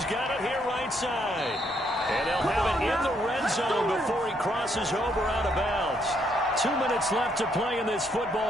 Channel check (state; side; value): normal; both; correlation 0.73